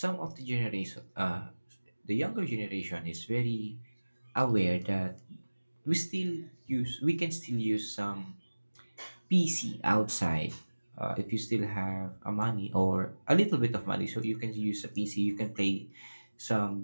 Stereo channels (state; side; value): inverted; both; correlation -1.00